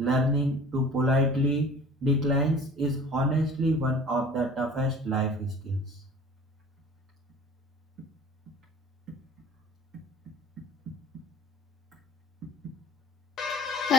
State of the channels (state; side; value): normal; both; correlation 0.45